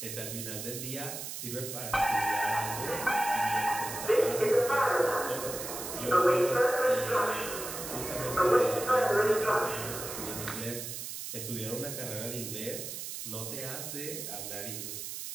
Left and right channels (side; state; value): right; noise; hiss, 7 dB below the sound